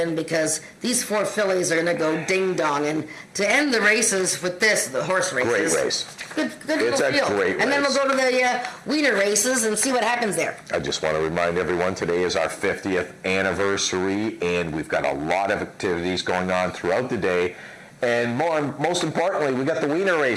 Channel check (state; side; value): identical; both; correlation 1.00